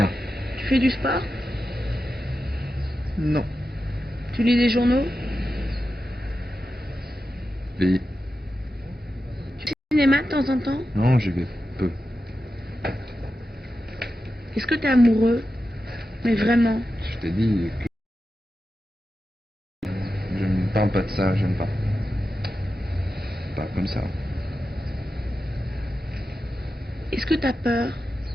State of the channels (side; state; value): both; normal; correlation 0.91